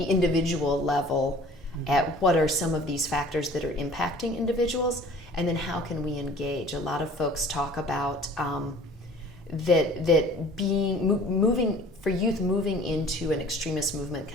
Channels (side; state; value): both; normal; correlation 0.48